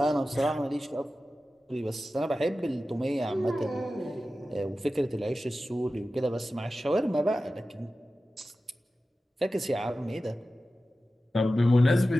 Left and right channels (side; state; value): both; normal; correlation 0.94